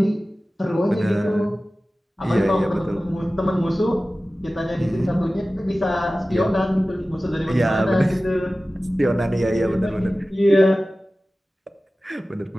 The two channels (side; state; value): both; normal; correlation 0.96